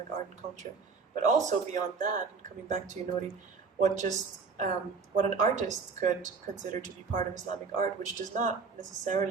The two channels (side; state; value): left; quieter; 5.0 dB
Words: art and culture. But also beyond that, and coming back to you, Nori, what an artist could consider to be part of Islamic art, which does not